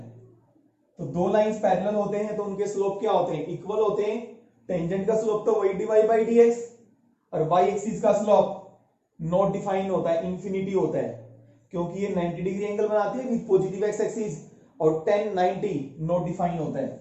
तो दो लाइंस पैरेलल होते हैं तो उनके स्लोप क्या होते हैं? इक्वल होते हैं। टेंजेंट का स्लोप तो वही dy बाई dx, और y एक्सिस का स्लोप नॉट डिफाइन होता है, इंफिनिटी होता है, क्योंकि ये 90 डिग्री एंगल बनाती है विद पॉजिटिव x एक्सिस, और 10 90 नॉट डिफाइन होता है,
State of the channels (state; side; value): identical; both; correlation 1.00